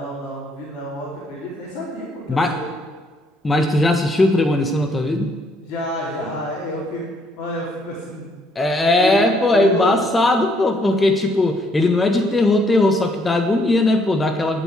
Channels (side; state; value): both; normal; correlation 0.69